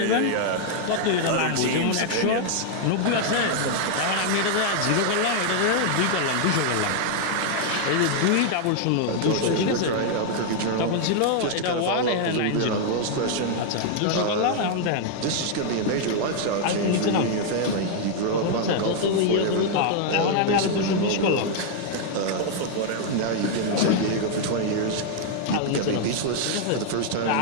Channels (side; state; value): both; different; correlation 0.00